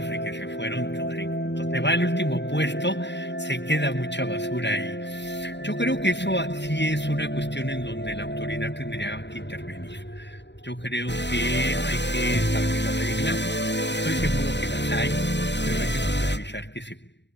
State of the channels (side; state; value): right; late; 0.51 ms